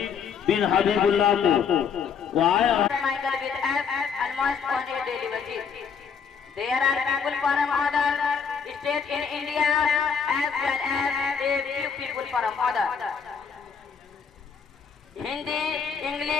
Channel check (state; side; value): quieter; right; 6.5 dB